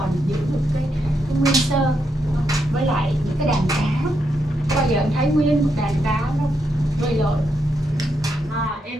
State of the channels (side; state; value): both; normal; correlation 0.81